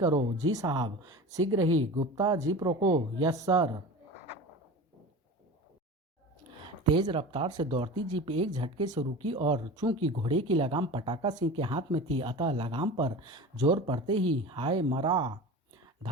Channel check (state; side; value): normal; both; correlation 0.33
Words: जी साहब, शीघ्र ही। गुप्ता, जीप रोको। Yes sir. तेज रफ्तार से दौड़ती जीप एक झटके से रुकी और चूंकि घोड़े की लगाम पटाका सिंह के हाथ में थी अतः लगाम पर जोर पड़ते ही हाय मरा,